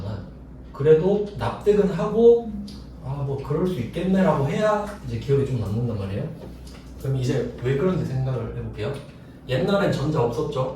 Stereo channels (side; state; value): both; identical; correlation 1.00